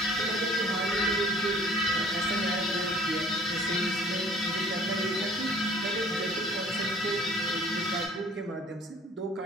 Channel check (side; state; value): both; normal; correlation 0.53